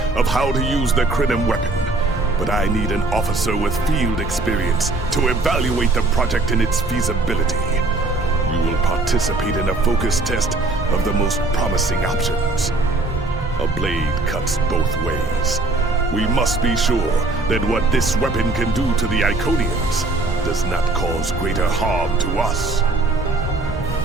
of how to use the Krenim weapon. But I need an officer with field experience to evaluate the project and its feasibility. You will participate in a focus test of the most promising options. A blade cuts both ways. We must be sure that what this weapon can do to the Iconians does not cause greater harm to us.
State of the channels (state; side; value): quieter; left; 3.0 dB